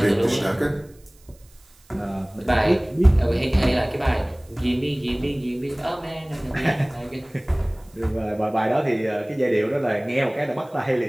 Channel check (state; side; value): noise; right; hiss, 30 dB below the sound